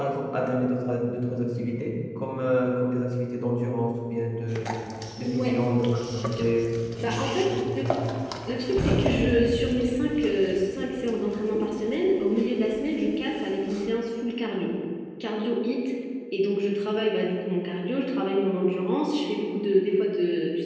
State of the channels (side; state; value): both; identical; correlation 1.00